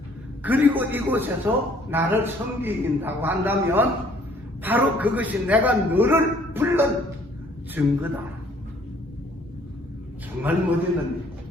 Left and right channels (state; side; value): normal; both; correlation 0.60